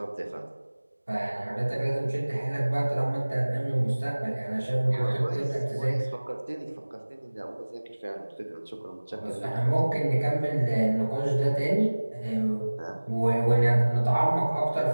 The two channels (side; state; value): both; inverted; correlation -1.00